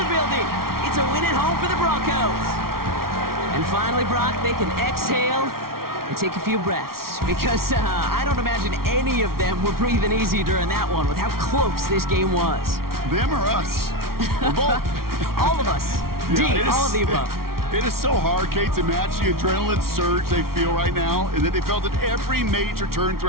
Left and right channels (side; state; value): left; late; 0.93 ms